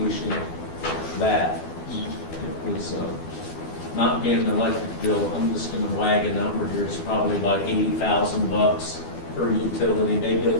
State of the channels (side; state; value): right; late; 12 ms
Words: that. It was not paying the electric bill, I'm just gonna wag a number here, it's probably about $80,000 per utility, maybe a